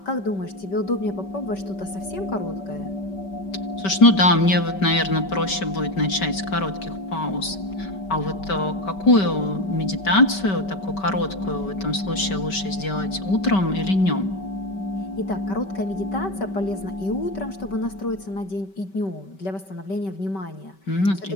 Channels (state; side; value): late; right; 5.2 ms